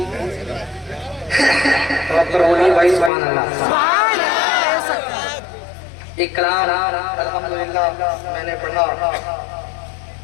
बोलिए भाई सुभान अल्लाह। एक कलाम अल्हम्दुलिल्लाह मैंने पढ़ा,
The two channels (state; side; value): drops out; right; at 3.1 s